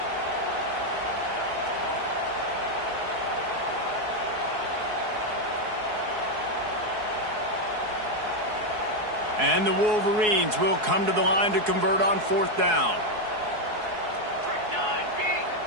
And the Wolverines will come to the line to convert on 4th down.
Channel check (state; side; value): late; left; 4.7 ms